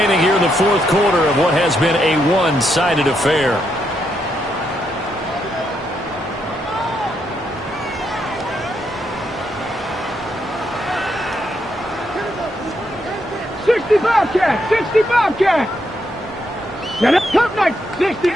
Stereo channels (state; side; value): normal; both; correlation 0.79